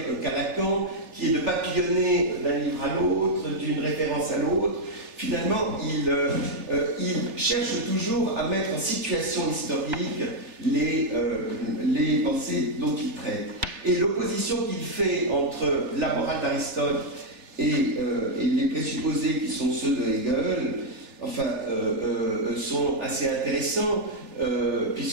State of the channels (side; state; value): left; late; 3.4 ms